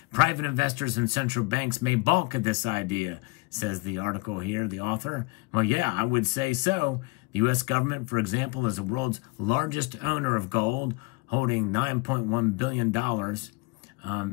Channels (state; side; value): quieter; right; 27.5 dB